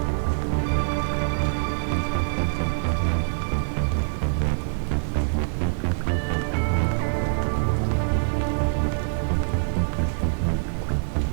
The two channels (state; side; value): silent; left; digital silence